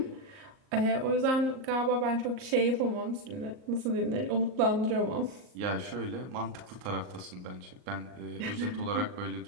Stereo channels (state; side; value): late; left; 38 ms